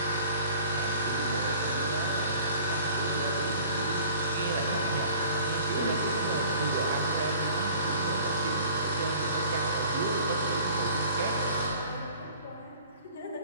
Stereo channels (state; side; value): inverted; both; correlation -0.49